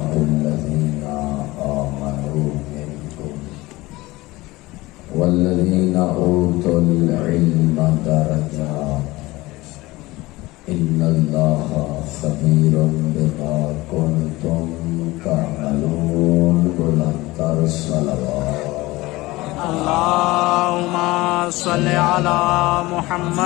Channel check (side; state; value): right; quieter; 20.1 dB